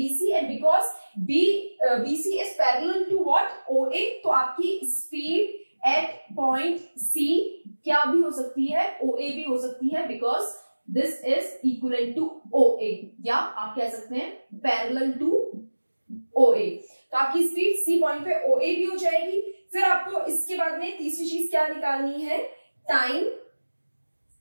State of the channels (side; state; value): both; inverted; correlation -1.00